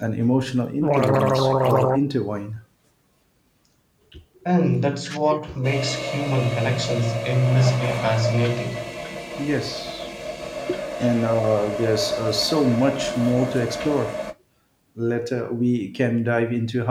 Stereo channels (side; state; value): both; identical; correlation 1.00